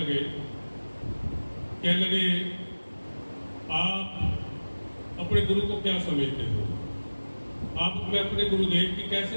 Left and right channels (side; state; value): both; inverted; correlation -1.00